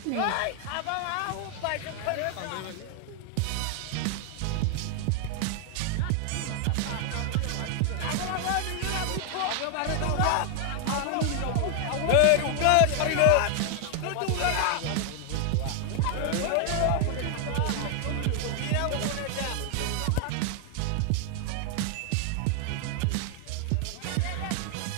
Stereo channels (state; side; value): different; both; correlation 0.00